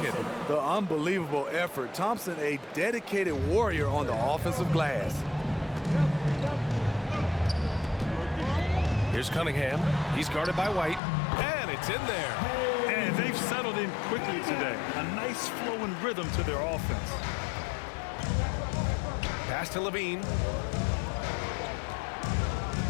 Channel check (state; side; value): drops out; right; at 11.0 s